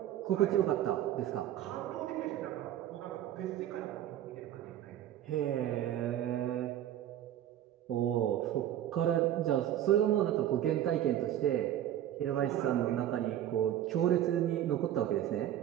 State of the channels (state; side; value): quieter; left; 11.7 dB